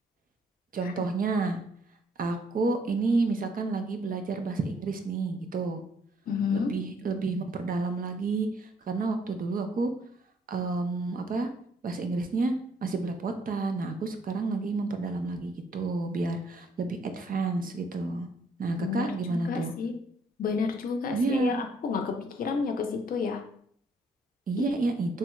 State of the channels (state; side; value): normal; both; correlation 0.67